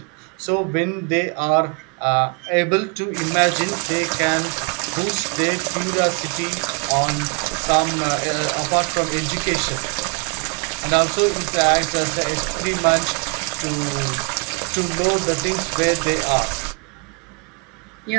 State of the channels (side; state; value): left; quieter; 34.1 dB